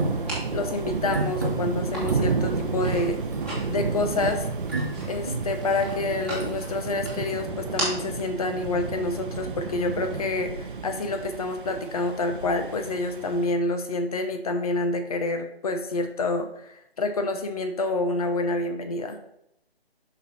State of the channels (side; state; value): both; normal; correlation 0.02